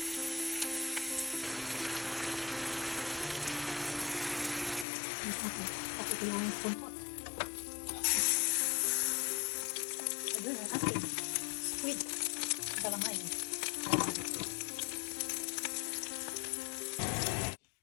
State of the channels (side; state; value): right; drops out; at 4.9 s